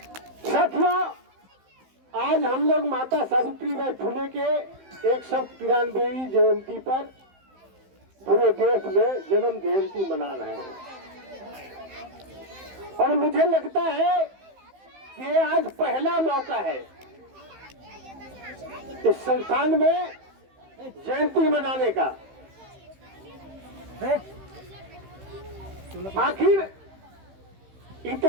साथियों, आज हम लोग माता सावित्रीबाई फुले के 193वीं जयंती पर पूरे देश में जन्म जयंती मना रहे हैं और मुझे लगता है कि आज पहला मौका है इस संस्थान में जयंती मनाने का। आखिर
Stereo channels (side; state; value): left; late; 15 ms